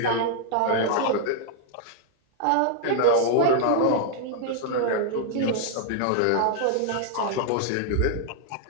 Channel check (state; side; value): different; both; correlation -0.01